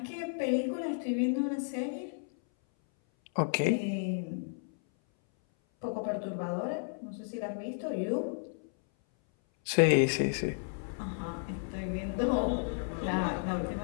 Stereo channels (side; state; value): right; silent; 56 dB below the other